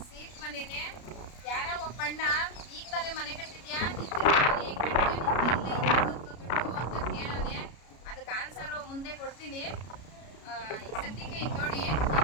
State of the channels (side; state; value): right; late; 33 ms